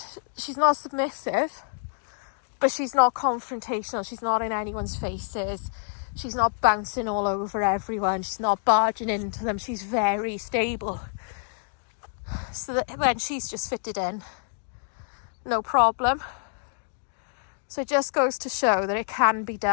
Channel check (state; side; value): silent; right; digital silence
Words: she's not submissive, but she's not confrontational. She's not in anyone's faces. She's not bouncing all over everyone. She's not barging into them. She's very stable. So that when she's just fitted in, no problem. So it just goes to show that it can be